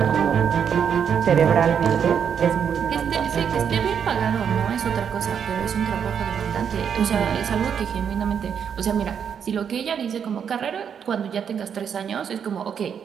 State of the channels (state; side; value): quieter; left; 7.7 dB